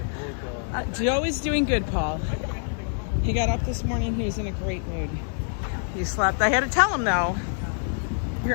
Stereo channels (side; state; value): right; silent; digital silence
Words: Joe is doing good, Paul. He got up this morning. He was in a great mood. He slept. I had to tell him, though.